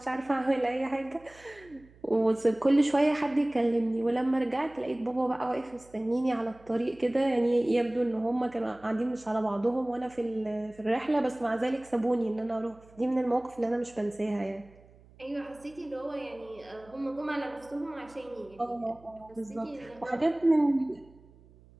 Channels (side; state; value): right; noise; hum, 26 dB below the sound